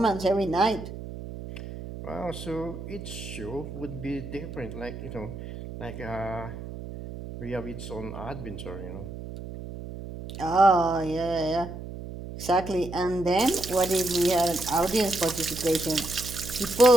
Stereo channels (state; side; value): noise; right; hum, 10 dB below the sound